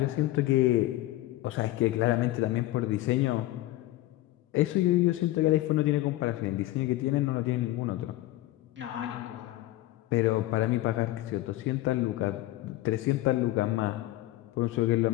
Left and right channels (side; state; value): right; quieter; 16.6 dB